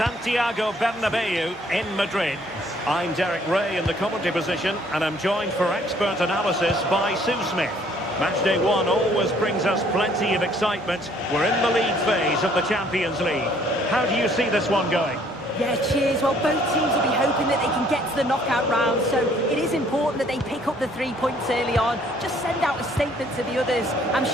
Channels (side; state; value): both; normal; correlation 0.61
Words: Bernabeu in Madrid. I'm Derek Ray in the commentary position, and I'm joined for expert analysis by Sue Smith. Match day one always brings us plenty of excitement. We're in the league phase of the Champions League. How do you see this one going? Yeah, cheers. Well, both teams will be hoping that they can get to the knockout round, so it is important that they pick up the 3 points early on. Just send out a statement to the others. I'm